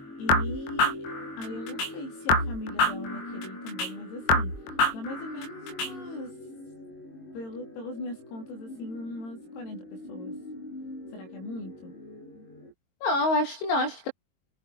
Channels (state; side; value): late; right; 22 ms